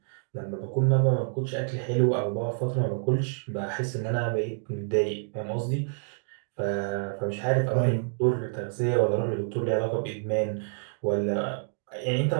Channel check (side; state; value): left; silent; digital silence